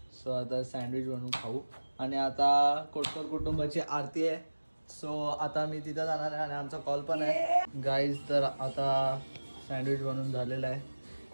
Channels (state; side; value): inverted; both; correlation -1.00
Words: सो आता सँडविच बनवून खाऊ. आणि आता कोटकर कुटुंबाची आरती आहे. सो आता मी तिथं जाणार आहे आणि आमचा कॉल पण आहे गाईज. तर आता सँडविच बनवून झालेलं आहे